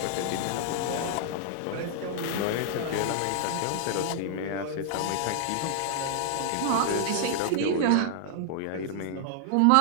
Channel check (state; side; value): different; both; correlation -0.01